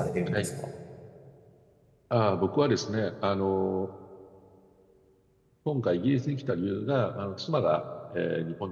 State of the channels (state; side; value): identical; both; correlation 1.00